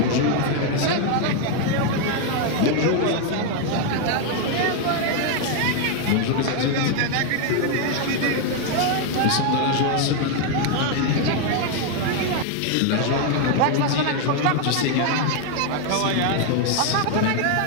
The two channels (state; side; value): different; both; correlation 0.01